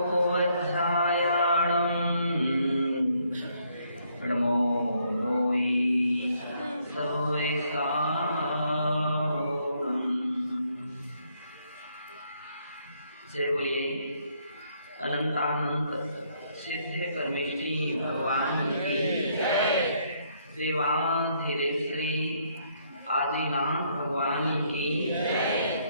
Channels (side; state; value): both; inverted; correlation -0.70